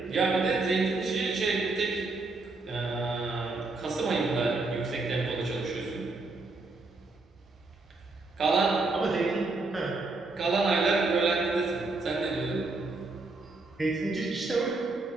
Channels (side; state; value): left; quieter; 3.4 dB